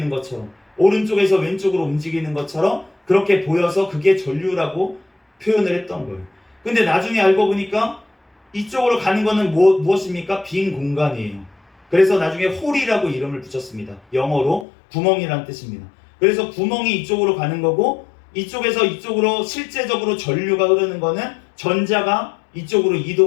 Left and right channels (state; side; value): drops out; right; at 14.7 s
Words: 것처럼, 오른쪽에서 왼쪽으로 움직이는 것처럼 그렇게 보여서 그게 전류라고 표현을 했던 거예요. 근데 나중에 알고 보니까 이쪽으로 가는 거는 무엇입니까? 빈 공간이에요. 그래서 나중에 홀이라고 이름을 붙였습니다. 영어로 구멍이란 뜻입니다. 그래서 구멍이 이쪽으로 가는 거고 이쪽에서 이쪽으로 실제적으로 전류가 흐르는 거는 전자가 이쪽으로